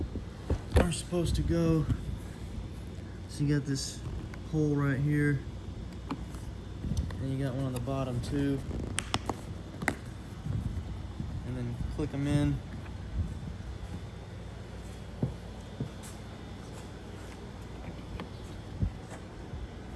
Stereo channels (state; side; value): identical; both; correlation 1.00